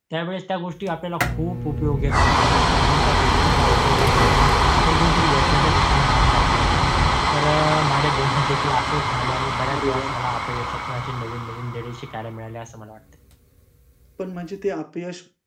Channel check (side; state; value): both; identical; correlation 1.00